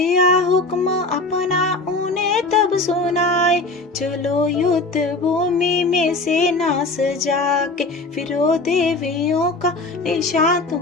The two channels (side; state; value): right; quieter; 3.2 dB